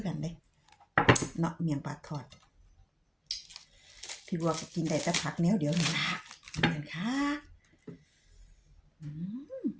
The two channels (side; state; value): both; identical; correlation 1.00